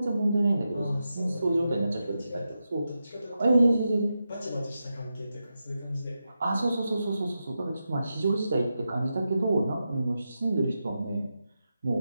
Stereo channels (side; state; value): both; inverted; correlation -0.89